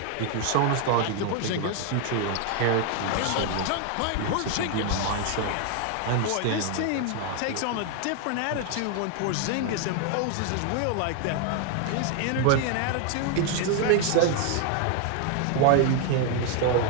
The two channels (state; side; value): different; both; correlation 0.00